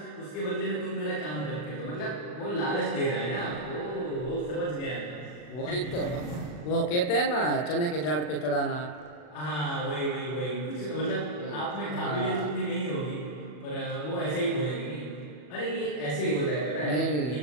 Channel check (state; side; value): late; right; 40 ms